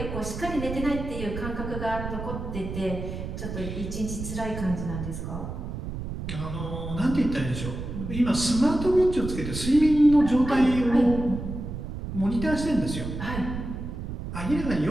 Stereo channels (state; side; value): noise; right; rumble, 6 dB below the sound